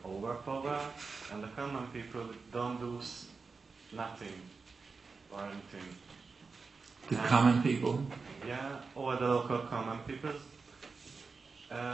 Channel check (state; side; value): quieter; left; 4.5 dB